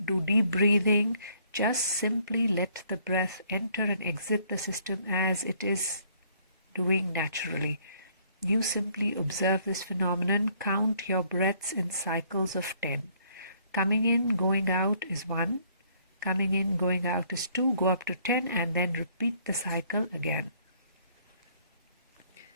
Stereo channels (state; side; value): inverted; both; correlation -0.64